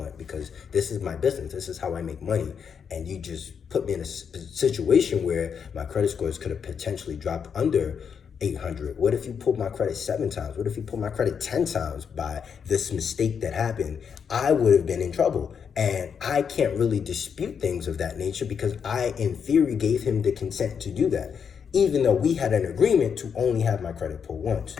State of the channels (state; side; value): quieter; right; 6.9 dB